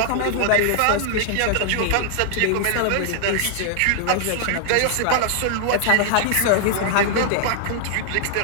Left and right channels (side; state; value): both; different; correlation 0.00